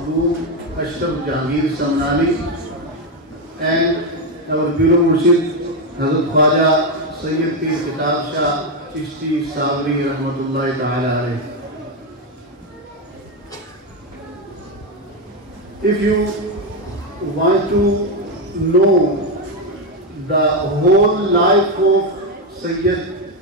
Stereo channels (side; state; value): both; normal; correlation 0.07